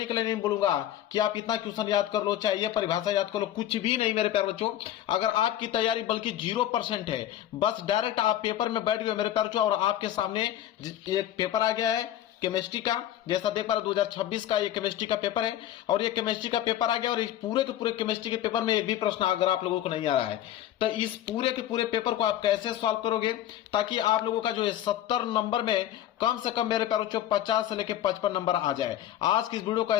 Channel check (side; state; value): right; quieter; 12.2 dB